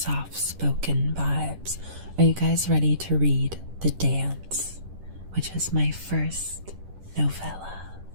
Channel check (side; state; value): left; late; 10 ms